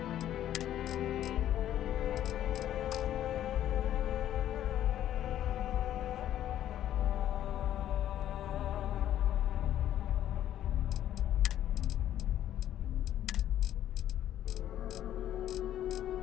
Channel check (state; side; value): quieter; right; 11.7 dB